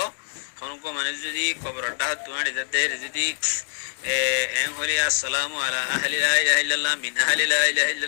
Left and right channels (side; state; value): right; silent; digital silence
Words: হনকো মানে যদি কবরটা তুমানি যাতে যদি এন হলি আসসালামু আলা আহলি লা ইলাহা ইল্লাল্লাহ মিন আহলি লা ইলাহা